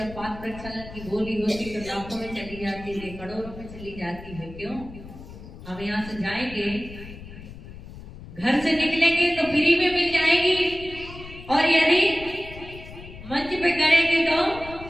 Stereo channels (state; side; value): noise; left; rumble, 14 dB below the sound